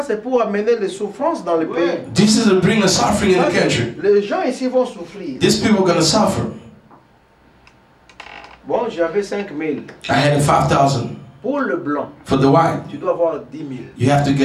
c'est pour amener les souffrances dans le pays. This is to bring a suffering in Ça, the country. les gens ici vont souffrir. These people are going to suffer. Bon, j'avais 5 000. I had a 5,000 Pour le blanc, for the white. tu dois avoir 10 000. You have to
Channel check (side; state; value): both; identical; correlation 1.00